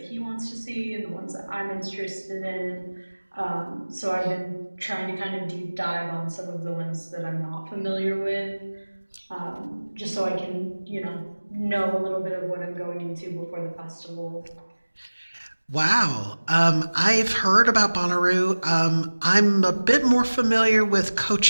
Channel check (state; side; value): inverted; both; correlation -1.00